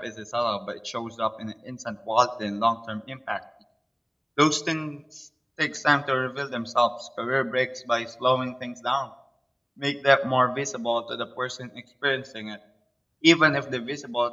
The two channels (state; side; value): identical; both; correlation 1.00